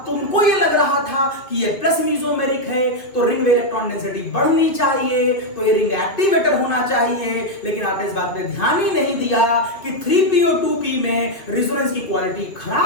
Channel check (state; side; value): late; right; 2.7 ms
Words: तुमको ये लग रहा था कि ये प्लस मीजोमेरिक है तो रिंग में इलेक्ट्रॉन डेंसिटी बढ़नी चाहिए, तो ये रिंग एक्टिवेटर होना चाहिए, लेकिन आपने इस बात पे ध्यान ही नहीं दिया कि 3PO2P में रिजोनेंस की क्वालिटी